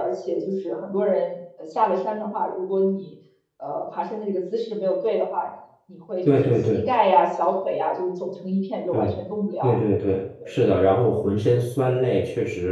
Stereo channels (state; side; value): identical; both; correlation 1.00